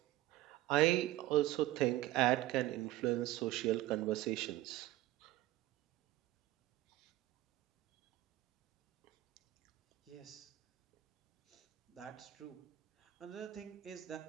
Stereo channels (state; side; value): quieter; left; 15.8 dB